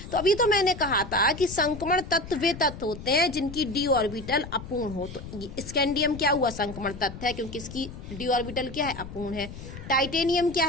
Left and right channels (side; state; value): left; noise; rumble, 12 dB below the sound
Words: तो अभी तो मैंने कहा था कि संक्रमण तत्व वे तत्व होते हैं जिनकी डी ऑर्बिटल अपूर्ण हो। तो स्कैंडियम क्या हुआ, संक्रमण तत्व है क्योंकि इसकी डी ऑर्बिटल क्या है, अपूर्ण है। टाइटेनियम क्या